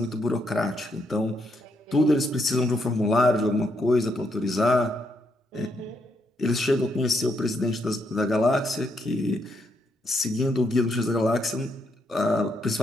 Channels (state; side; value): normal; both; correlation 0.77